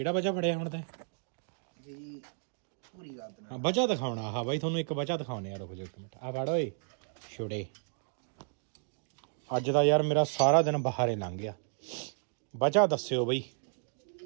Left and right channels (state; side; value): silent; left; digital silence